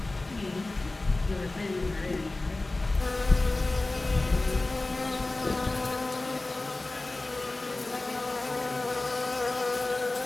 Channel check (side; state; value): right; quieter; 3.0 dB